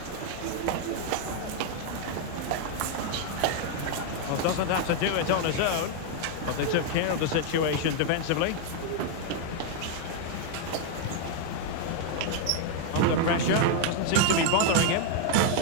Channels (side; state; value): both; different; correlation 0.00